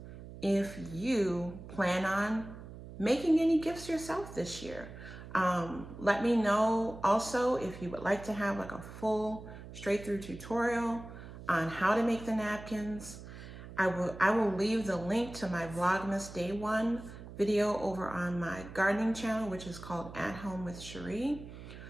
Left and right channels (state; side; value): noise; right; hum, 14 dB below the sound